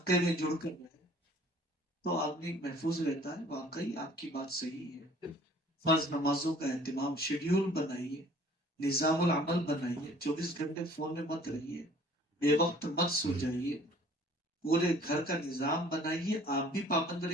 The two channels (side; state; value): both; normal; correlation 0.53